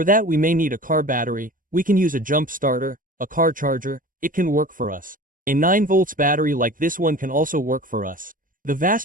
that we may need a car battery, we can use a jump starter, a car charger, it can work for us. A 9 volts battery like this one can also work for us. The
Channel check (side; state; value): left; late; 0.40 ms